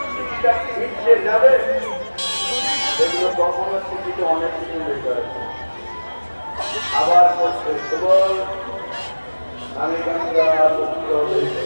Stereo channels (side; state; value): both; inverted; correlation -1.00